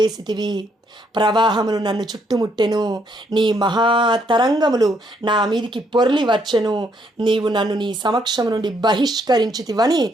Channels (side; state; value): both; normal; correlation 0.72